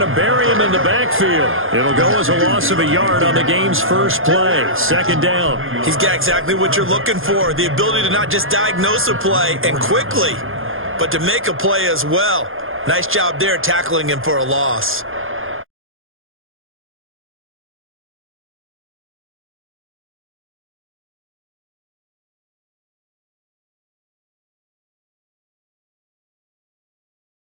to bury him in the backfield. It'll go as a loss of a yard on the game's first play. Second down. He's got exactly what you're looking for, the ability to not just diagnose a play and quickly, but to make a play as well. Nice job there tackling him for a loss.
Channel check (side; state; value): left; late; 0.60 ms